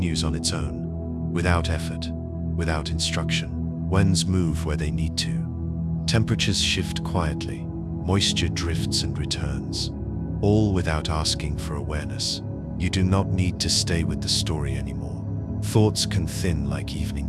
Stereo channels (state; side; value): identical; both; correlation 1.00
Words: on its own, without effort, without instruction. Winds move where they need to. Temperatures shift quietly. Moisture drifts and returns, all without asking for awareness. You do not need to stay with the story anymore. Thoughts can thin like